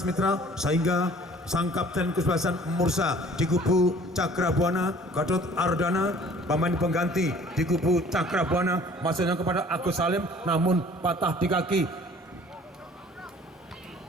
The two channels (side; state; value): both; normal; correlation 0.52